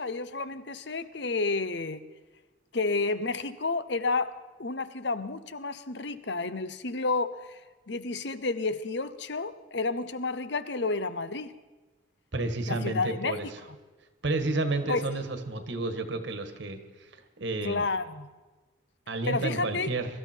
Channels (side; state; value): both; normal; correlation -0.10